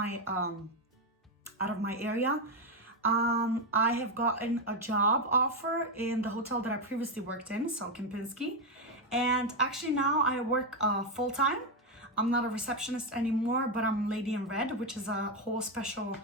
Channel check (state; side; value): normal; both; correlation 0.07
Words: area, I have gotten a job offer in the hotel that I previously worked in, so Kempinski. And actually now I work full-time. I'm not a receptionist anymore, but I'm Lady in Red, which is a whole special